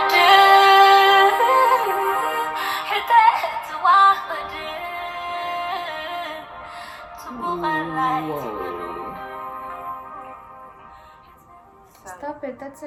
Stop it, that's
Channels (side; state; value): both; identical; correlation 1.00